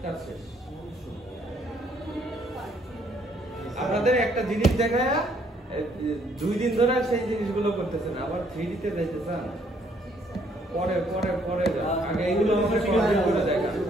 কাজ শেষ। আপনাদের একটা জিনিস দেখায় 2 দিন ধরে সেই জিনিসগুলো করতেছেন, আবার 3D তে যাইতে চান, পরে আগে এগুলো আমাদের ক্লিয়ার করে দেখা।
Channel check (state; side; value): normal; both; correlation 0.67